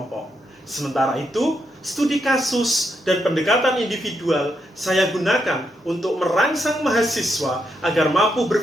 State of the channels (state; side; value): normal; both; correlation 0.81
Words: Sementara itu, studi kasus dan pendekatan individual saya gunakan untuk merangsang mahasiswa agar mampu